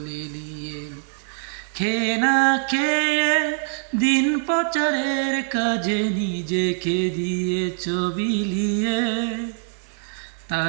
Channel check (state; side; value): silent; left; 57 dB below the other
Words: লেলিয়ে। খেয়ে না খেয়ে দিন প্রচারের কাজে নিজেকে দিয়েছ বিলিয়ে।